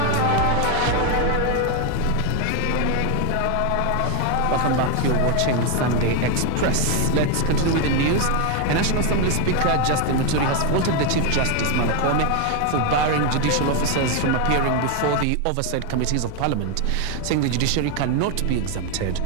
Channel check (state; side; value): different; both; correlation 0.01